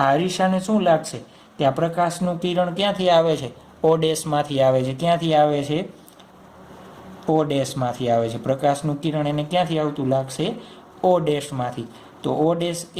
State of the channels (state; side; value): identical; both; correlation 1.00